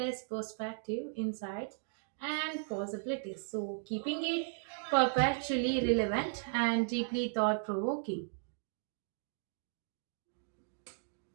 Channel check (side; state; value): left; silent; digital silence